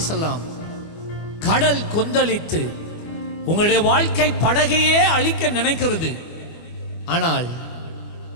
கடல் கொந்தளித்து உங்களுடைய வாழ்க்கை படகையே அழிக்க நினைக்கிறது. ஆனால்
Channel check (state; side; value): late; right; 24 ms